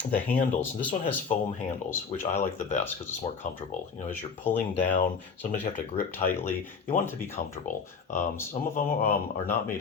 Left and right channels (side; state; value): right; quieter; 5.6 dB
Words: the handles. This one has foam handles, which I like the best because it's more comfortable. As you're pulling down, sometimes you have to grip tightly. You want it to be comfortable. Some of them are not